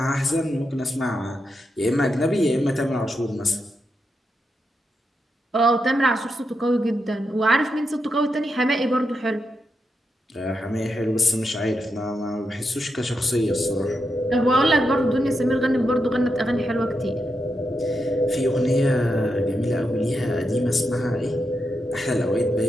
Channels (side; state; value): both; normal; correlation 0.85